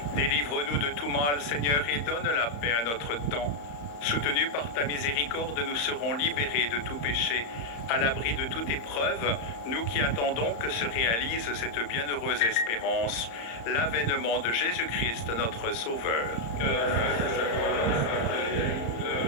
Délivre-nous de tout mal, Seigneur, et donne la paix à notre temps. Soutenus par ta miséricorde, nous serons libérés de tout péché, à l'abri de toute épreuve, nous qui attendons que se réalise cette bienheureuse espérance, l'avènement de Jésus-Christ, notre Sauveur.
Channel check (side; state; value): right; late; 35 ms